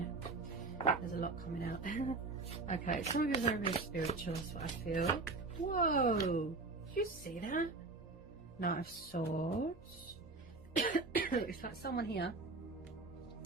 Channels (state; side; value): quieter; left; 3.5 dB